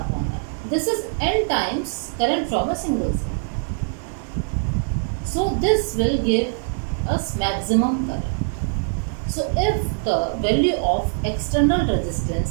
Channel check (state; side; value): silent; left; 63 dB below the other